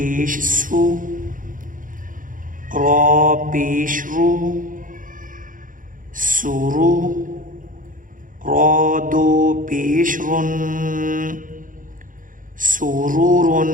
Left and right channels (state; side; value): late; left; 0.39 ms